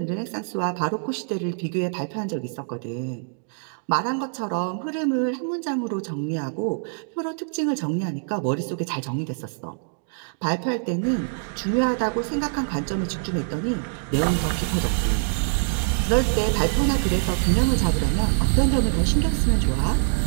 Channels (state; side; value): silent; left; digital silence